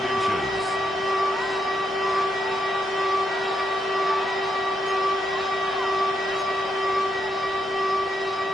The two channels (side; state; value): both; normal; correlation 0.79